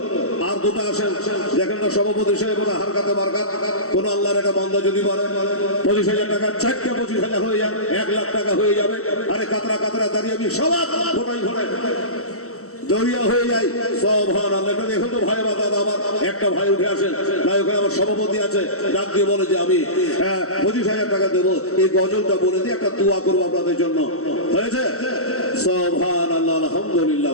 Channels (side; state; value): right; late; 0.64 ms